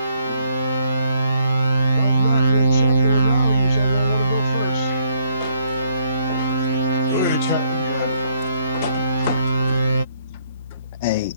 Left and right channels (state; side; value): inverted; both; correlation -0.70